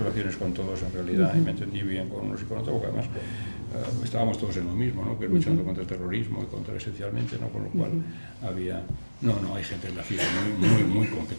con todos en realidad, y me entendí bien con unos y con otros, porque además estábamos todos en lo mismo, ¿no?, que luchando contra el terrorismo y contra esencialmente, ¿no?, con lo cual había... No, hay gente en la CIA muy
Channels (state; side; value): inverted; both; correlation -1.00